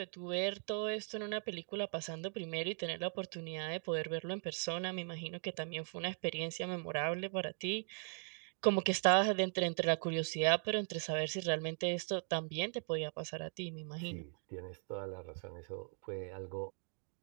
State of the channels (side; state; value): left; silent; 52 dB below the other